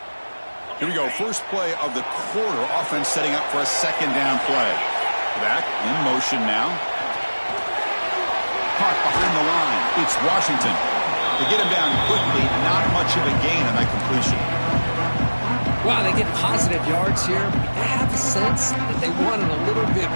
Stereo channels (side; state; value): both; inverted; correlation -1.00